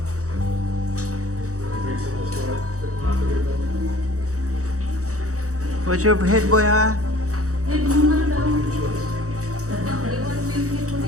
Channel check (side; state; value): left; late; 0.65 ms